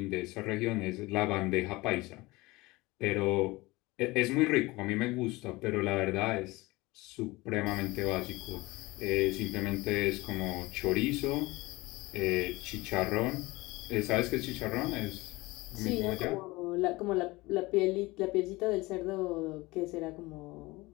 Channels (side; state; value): right; quieter; 21.7 dB